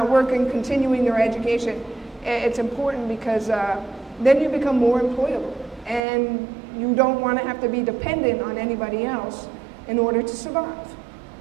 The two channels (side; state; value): left; drops out; at 6.0 s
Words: working, continuing your education, it's important because then you become more employable. And you don't want to have to be dependent on anybody else in order to survive.